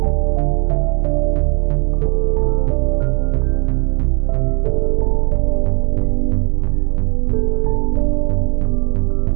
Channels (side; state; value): left; quieter; 34.7 dB